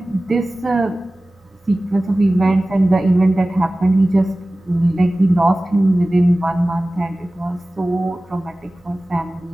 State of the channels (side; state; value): both; normal; correlation 0.97